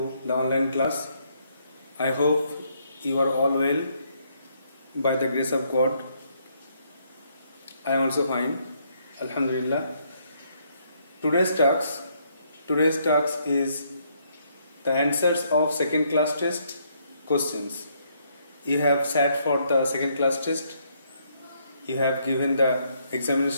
the online class. I hope you are all well by the grace of God. I am also fine, Alhamdulillah. Today's task is the answers of second class test questions. You have sat for the second class test. You have given the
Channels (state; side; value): inverted; both; correlation -0.71